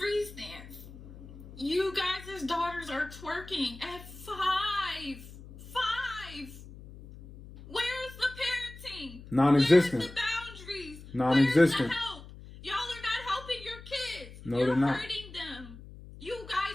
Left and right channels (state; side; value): noise; left; hum, 16 dB below the sound